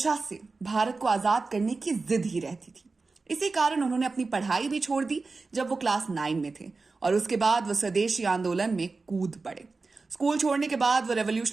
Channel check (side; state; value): left; quieter; 3.9 dB